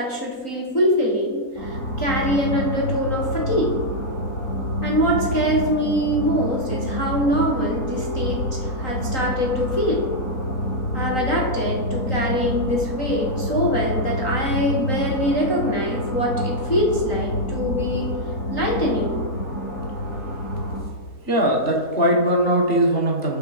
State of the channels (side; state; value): right; late; 3.9 ms